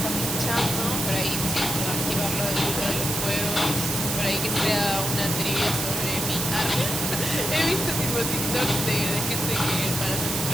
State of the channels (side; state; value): right; noise; hiss, 3 dB below the sound